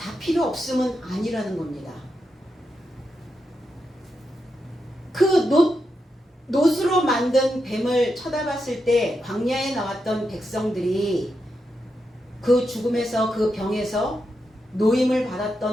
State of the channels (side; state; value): both; normal; correlation 0.86